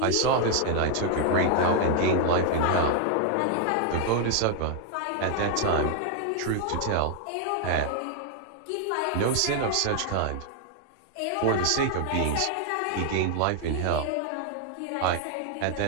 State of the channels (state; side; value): different; both; correlation 0.00